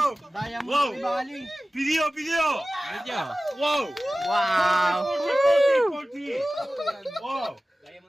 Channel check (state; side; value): normal; both; correlation 0.96